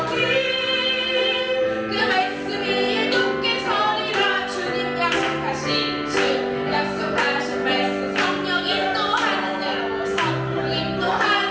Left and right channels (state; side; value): identical; both; correlation 1.00